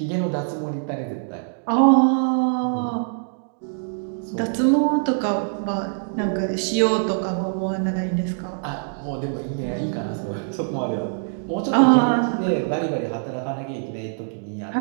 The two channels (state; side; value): silent; left; digital silence